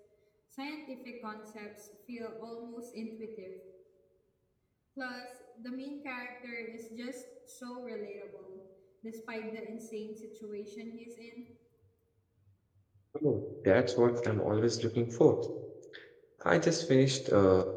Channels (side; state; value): both; identical; correlation 1.00